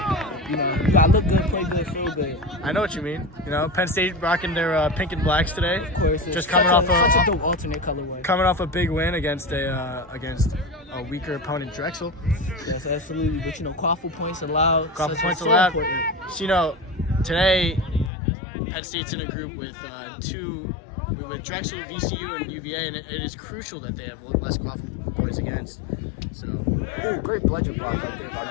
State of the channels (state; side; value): drops out; right; at 18.1 s